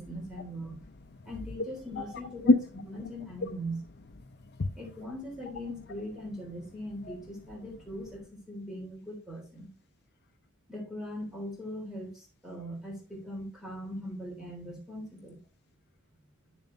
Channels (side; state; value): both; normal; correlation 0.54